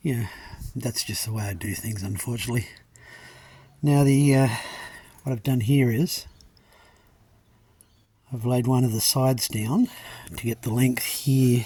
Yeah, that's just the way I do things, unfortunately. Now what I've done here is I've laid one of the sides down to get the length here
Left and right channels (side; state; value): both; identical; correlation 1.00